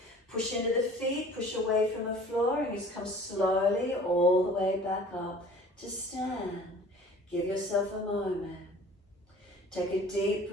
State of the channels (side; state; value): both; normal; correlation 0.47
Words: Push into the feet. Push away from the floor and just come slowly all the way back up to stand. Give yourself a moment. Take a deep